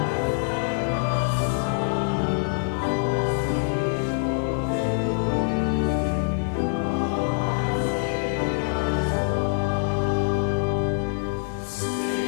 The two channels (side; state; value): right; silent; 59 dB below the other